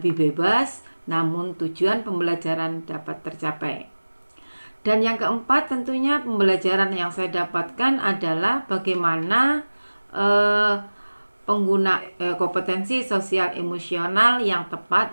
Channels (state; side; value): inverted; both; correlation -1.00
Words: bebas, namun tujuan pembelajaran dapat tercapai. Dan yang keempat, tentunya pembelajaran yang saya dapatkan adalah bagaimana kompetensi sosial emosional yang tepat